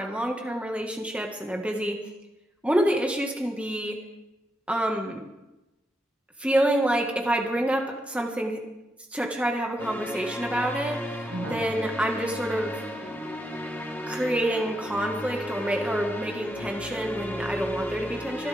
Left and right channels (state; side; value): normal; both; correlation 0.82